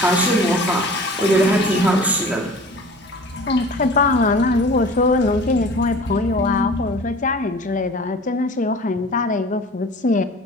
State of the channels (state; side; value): normal; both; correlation 0.43